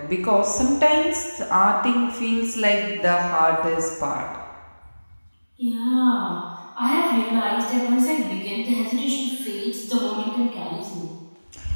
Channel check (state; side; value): inverted; both; correlation -1.00